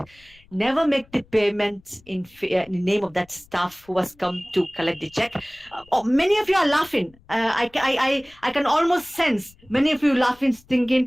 Never make the payment in the name of that staff who has come to collect the check. Many of you are laughing. I can almost sense many of you laughing,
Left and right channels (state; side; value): noise; left; rumble, 29 dB below the sound